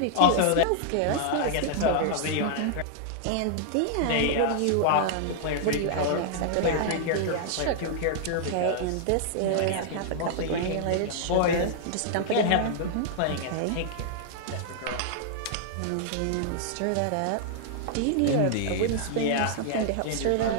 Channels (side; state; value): both; different; correlation -0.01